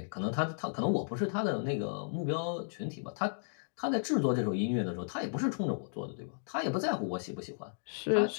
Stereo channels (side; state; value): right; silent; digital silence